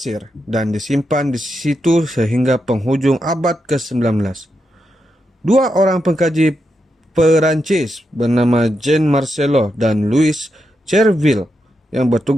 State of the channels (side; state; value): both; normal; correlation 0.85